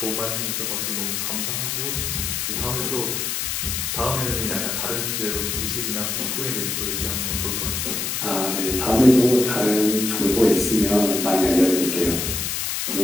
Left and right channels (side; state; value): left; noise; hiss, 1 dB below the sound